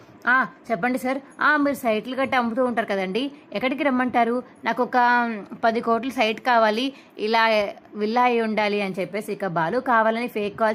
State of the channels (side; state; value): both; identical; correlation 1.00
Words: చెప్పండి సార్, మీరు సైట్లు గట్టి అమ్ముతూ ఉంటారు కదండి, ఎక్కడికి రమ్మంటారు? నాకు ఒక 10 కోట్ల సైట్ కావాలి, ఇలా విల్లా అయి ఉండాలి అని చెప్పేసి ఇక బాలు కావాలని ఫేక్